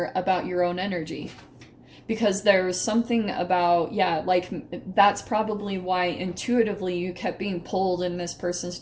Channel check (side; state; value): both; identical; correlation 1.00